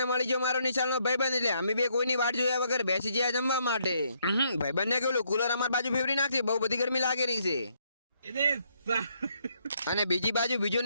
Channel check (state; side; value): inverted; both; correlation -0.72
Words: મળી ગયો મારો નિશાળનો ભાઈબંધ, એટલે અમે બે કોઈની વાટ જોયા વગર બેસી ગયા જમવા માટે. ભાઈબંધને કેવું કુલર અમારી બાજુ ફેવરી નાખશે, બહુ બધી ગરમી લાગી રહી છે. અને બીજી બાજુ બીજો